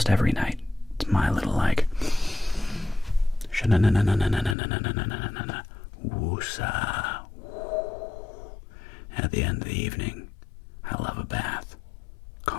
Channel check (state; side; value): drops out; right; at 4.5 s